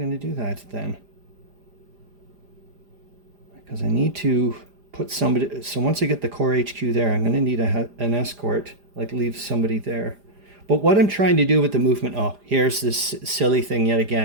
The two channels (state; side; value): late; left; 4.9 ms